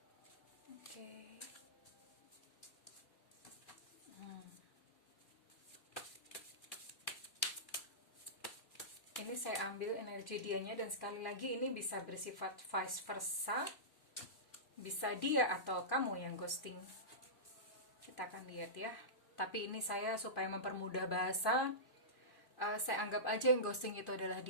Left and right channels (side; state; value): right; late; 2.4 ms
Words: Oke. Ini saya ambil energi dianya, dan sekali lagi ini bisa bersifat vice versa. Bisa dia atau kamu yang ghosting. Kita akan lihat ya. Tapi ini saya supaya mempermudah bahasa, saya anggap aja yang ghosting itu adalah